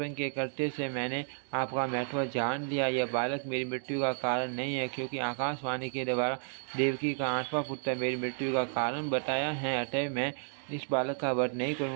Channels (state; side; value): silent; left; 56 dB below the other